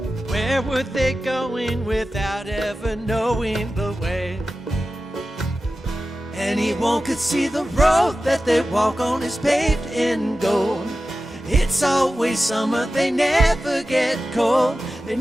Where were they going without ever knowing the way? Anyone could see the road that they walk on is paved in gold. It's always summer, they never get cold. They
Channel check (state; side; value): normal; both; correlation 0.94